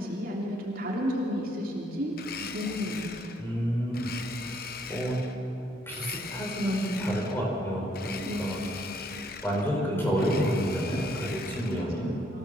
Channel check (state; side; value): normal; both; correlation 0.69